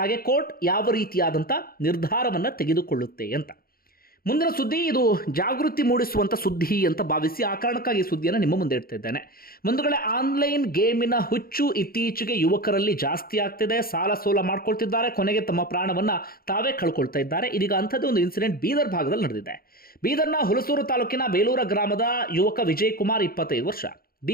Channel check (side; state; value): right; late; 0.43 ms